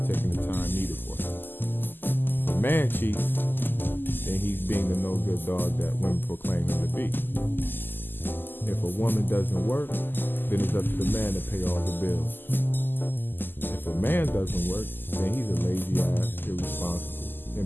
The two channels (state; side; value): late; right; 0.093 ms